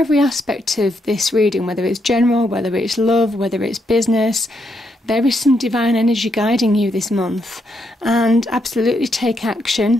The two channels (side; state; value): both; normal; correlation 0.78